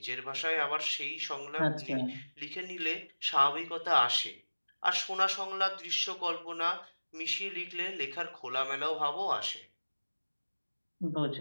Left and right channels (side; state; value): both; inverted; correlation -1.00